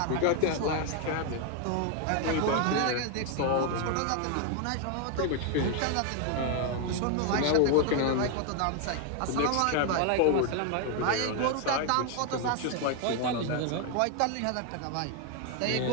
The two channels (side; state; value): both; different; correlation 0.01